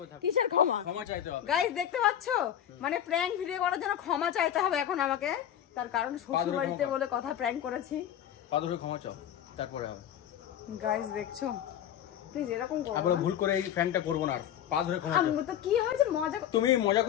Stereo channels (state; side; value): quieter; right; 10.4 dB